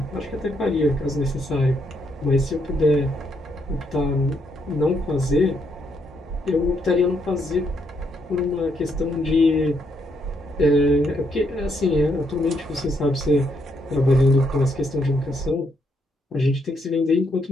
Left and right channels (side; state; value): both; normal; correlation 0.76